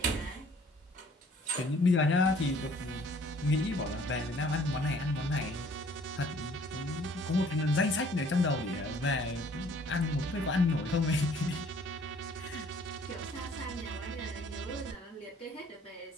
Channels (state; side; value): normal; both; correlation 0.57